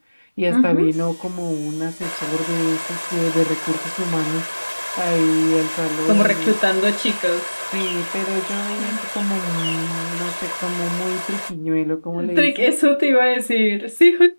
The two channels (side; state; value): both; inverted; correlation -1.00